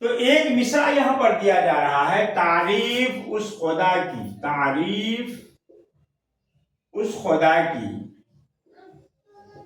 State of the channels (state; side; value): identical; both; correlation 1.00